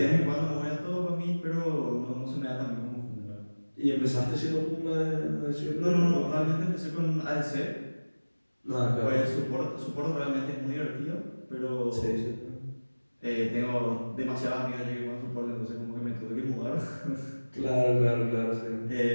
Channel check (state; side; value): inverted; both; correlation -1.00